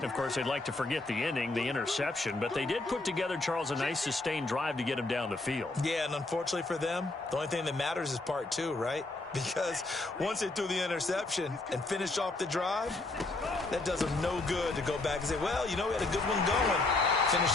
Of course, they'd like to forget the inning, the interception. But they did put together, Charles, a nice sustained drive to get him down the field. Yeah, and unfortunately for them, the only thing that matters is part two, right? Because once they threw the interception and finished off the drive, that does them no good to go back and say, well, you know, we had a good one going. Finish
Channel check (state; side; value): quieter; right; 3.1 dB